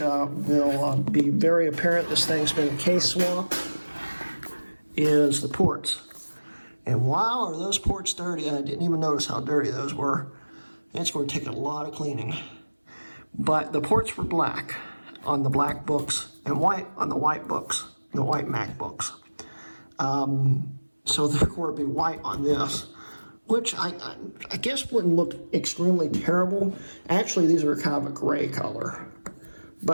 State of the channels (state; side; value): inverted; both; correlation -1.00